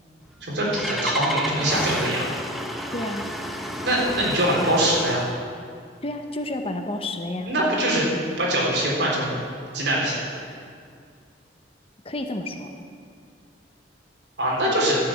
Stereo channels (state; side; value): normal; both; correlation 0.21